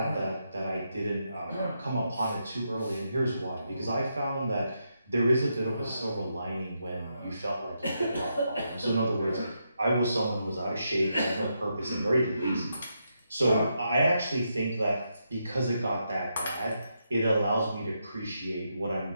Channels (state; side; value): inverted; both; correlation -0.82